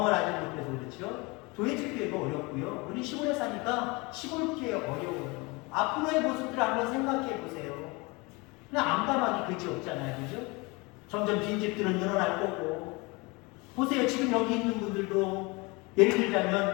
하지 못해서 그렇죠. 교회 집회가 어렵고요. 우리 시골에 사니까 시골교회 어려워요. 앞으로의 모습들을 한번 생각해 보세요. 그냥 암담하기 그지 없잖아요. 그죠? 점점 빈집들은 늘어날 거고. 보세요. 지금 여기 있는 분들도 예를 들자면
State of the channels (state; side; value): quieter; right; 26.2 dB